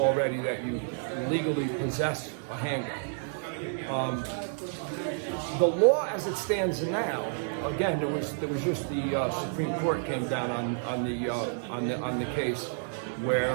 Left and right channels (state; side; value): silent; left; 58 dB below the other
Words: that you legally possess a handgun. The law as it stands now, again, there was just the Supreme Court came down on the case